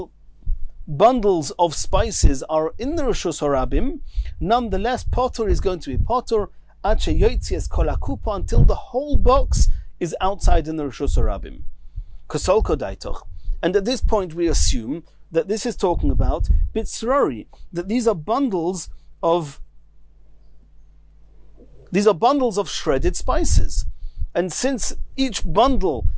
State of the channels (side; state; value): both; identical; correlation 1.00